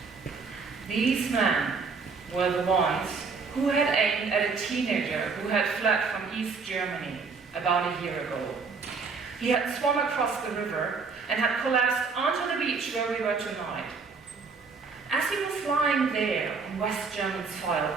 These men were the ones who had aimed at a teenager who had fled from East Germany about a year ago. He had swum across the river and had collapsed onto the beach where we were tonight. As he was lying there on West German soil,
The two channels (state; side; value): quieter; left; 4.9 dB